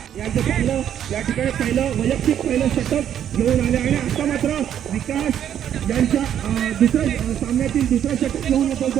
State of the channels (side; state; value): left; quieter; 9.9 dB